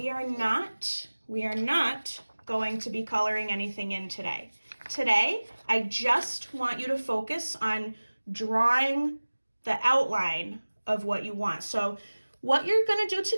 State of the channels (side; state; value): both; inverted; correlation -1.00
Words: are not going to be coloring anything in today. today, I just want you to focus on drawing the outline of what you want. So what you're going to do